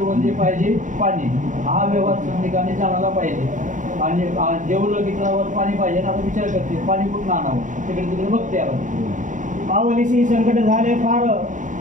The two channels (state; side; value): late; left; 0.37 ms